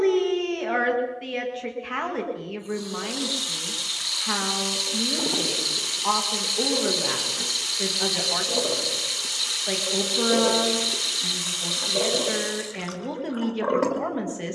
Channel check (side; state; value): both; identical; correlation 1.00